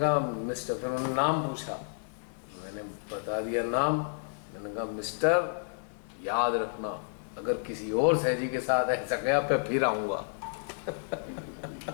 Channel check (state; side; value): silent; right; 57 dB below the other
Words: मिस्टर, फिर उन्होंने नाम पूछा, मैंने बता दिया नाम। मैंने कहा मिस्टर याद रखना, अगर किसी और सहजी के साथ ऐसा गया मैं फिर आऊँगा।